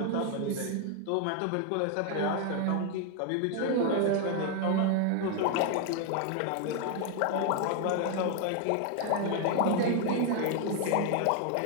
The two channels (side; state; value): both; different; correlation 0.01